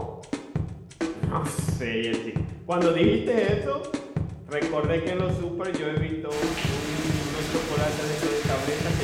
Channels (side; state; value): both; identical; correlation 1.00